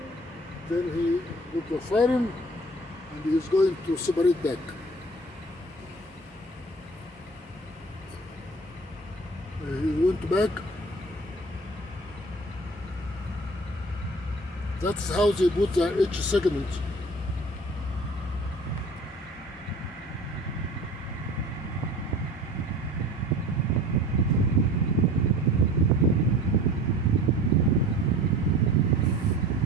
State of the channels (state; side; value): normal; both; correlation 0.44